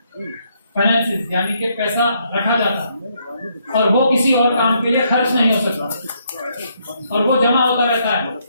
फाइनेंसिस यानी कि पैसा रखा जाता है और वो किसी और काम के लिए खर्च नहीं हो सकता और वो जमा होता रहता है।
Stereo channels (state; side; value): inverted; both; correlation -0.73